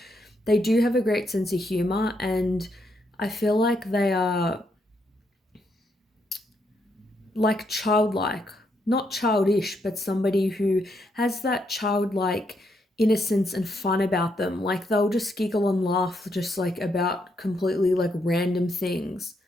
they do have a great sense of humor, and I feel like they are like childlike, not childish, but somebody who has that childlike innocence and fun about them. Like they'll just giggle and laugh just like about completely like random things.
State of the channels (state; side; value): normal; both; correlation 0.77